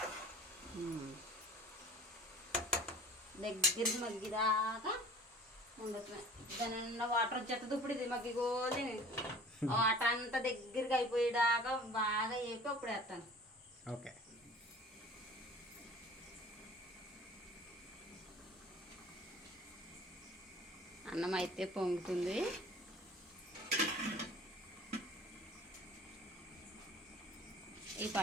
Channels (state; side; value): normal; both; correlation 0.46